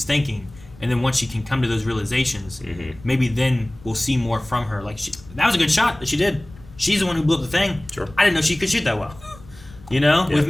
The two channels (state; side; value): noise; left; rumble, 21 dB below the sound